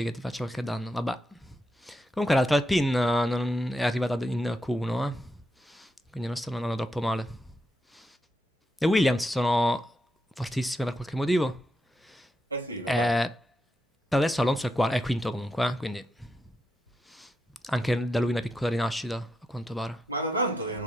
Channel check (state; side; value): normal; both; correlation 0.84